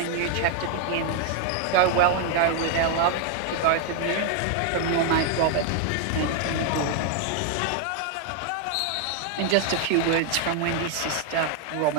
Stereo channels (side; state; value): both; different; correlation 0.01